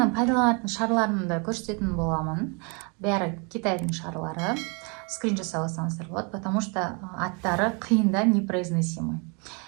пайдаланатын шарларымды көрсететін боламын. Бәрі Китайдың шарлары. Скрин жасап алсаңыздар болады, потому что аттары қиында непроизносимый.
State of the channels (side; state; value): left; quieter; 33.4 dB